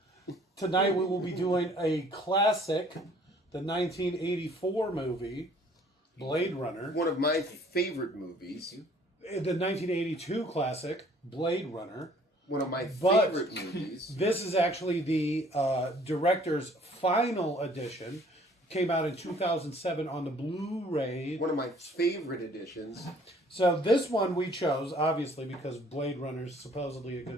tonight we will be doing a classic, the 1984 movie, Blade Runner. One of my favorite movies. The 1982 classic, Blade Runner. One of my But- favorite movies. This is actually the director's final edition. Came out in 2007 on the Blu-ray. One of my favorite editions. So this one we chose, obviously, because Blade Runner is supposedly a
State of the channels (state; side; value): normal; both; correlation 0.57